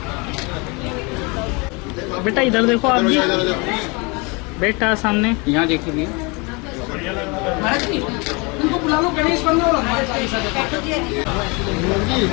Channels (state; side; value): quieter; right; 29.0 dB